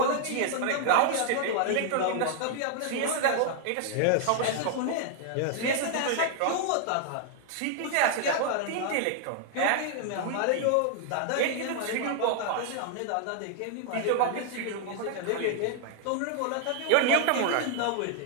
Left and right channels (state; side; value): different; both; correlation 0.00